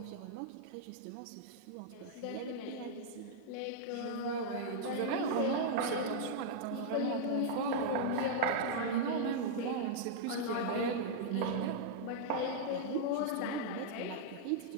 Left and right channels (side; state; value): both; different; correlation -0.02